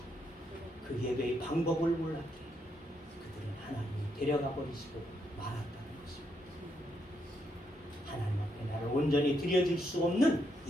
그 예배의 방법을 몰랐기에 그들은 하나님이 데려가 버리시고 말았다는 것입니다. 하나님 앞에 나를 온전히 드려줄 수 없는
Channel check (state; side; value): normal; both; correlation 0.78